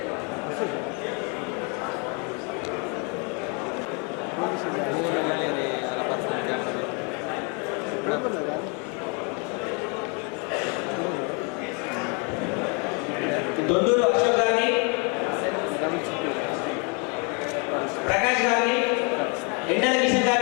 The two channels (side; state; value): right; quieter; 34.3 dB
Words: దొందూరు అశోక్ గారిని, ప్రకాష్ గారిని, ఎండల కిషన్